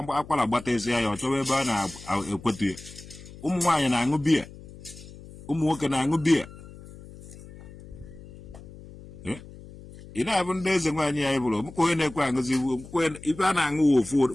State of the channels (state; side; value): noise; left; hum, 17 dB below the sound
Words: akwara gbata isi ya ọ chọwa ebe a na-ekwetu ya ụmụ nwaanyị na-aṅụ biya ụmụ nwoke na-aṅụ biya ị na-abụ ndị eze nwaanyị ya bụrụ mụka onye na-ekwe aṅụzi ibe a na-aṅụ ofu